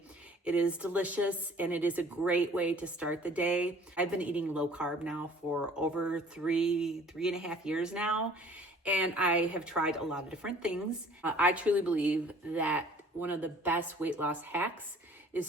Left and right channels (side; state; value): both; normal; correlation 0.52